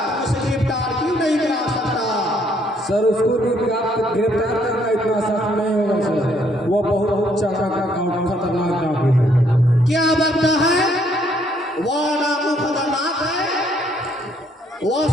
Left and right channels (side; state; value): both; normal; correlation 0.68